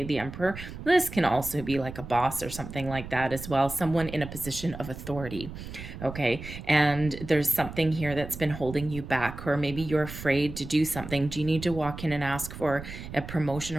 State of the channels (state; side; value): noise; right; rumble, 11 dB below the sound